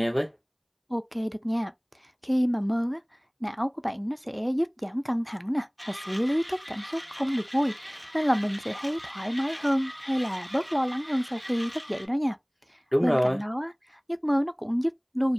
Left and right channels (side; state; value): both; identical; correlation 1.00